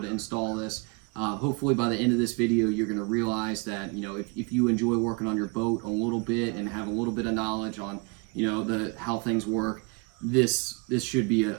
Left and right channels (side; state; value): left; quieter; 32.7 dB